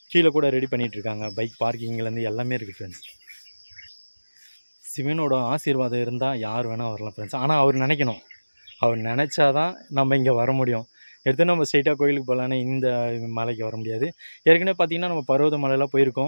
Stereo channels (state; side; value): inverted; both; correlation -1.00